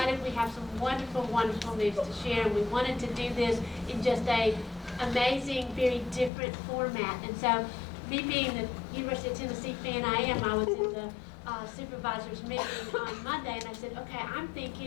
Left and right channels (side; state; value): right; drops out; at 6.3 s